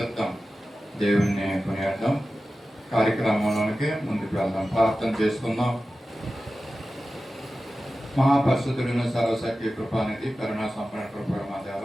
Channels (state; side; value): normal; both; correlation 0.94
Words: దేవుణ్ణి కొనియాడదాం. కార్యక్రమంలోనికి ముందుకు వెళ్దాం, ప్రార్థన చేసుకుందాం. మహాపరిశుద్ధులను సర్వశక్తి కృపానిధి కరుణా సంపన్న కృపణ మా దేవ,